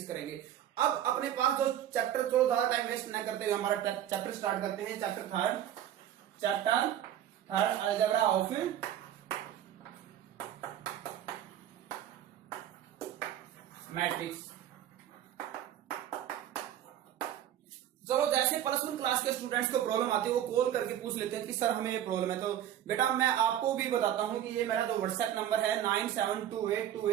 करेंगे। अब अपने पास जो चैप्टर, चलो ज्यादा टाइम वेस्ट न करते हुए हमारा चैप्टर स्टार्ट करते हैं। Chapter third algebra of matrix. चलो, जैसे प्लस वन क्लास के स्टूडेंट्स को प्रॉब्लम आती है वो कॉल करके पूछ लेते हैं कि सर हमें ये प्रॉब्लम है। तो बेटा मैं आपको भी बताता हूं कि ये मेरा जो व्हाट्सएप नंबर है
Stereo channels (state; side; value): quieter; left; 11.1 dB